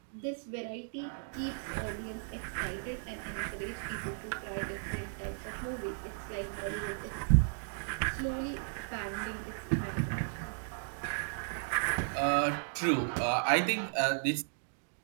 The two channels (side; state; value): left; silent; digital silence